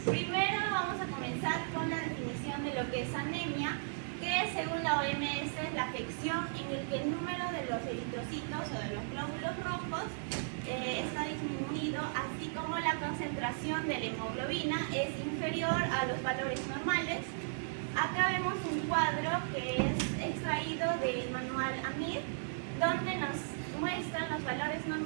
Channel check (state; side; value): silent; left; 54 dB below the other